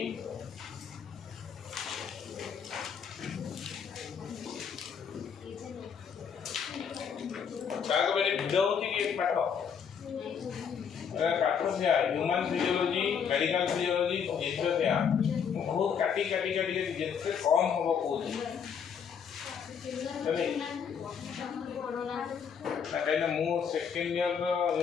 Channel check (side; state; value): right; quieter; 7.1 dB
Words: काको बेले भिडियो होची कि एक पाठ पाठ से ह्यूमन फिजियोलॉजी मेडिकल फिजियोलॉजी जिससे से बहुत काटी जितने कम होबो कोची तबे ना मु सेकंड ईयर